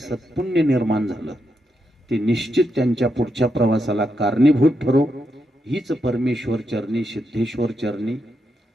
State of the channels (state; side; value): normal; both; correlation 0.83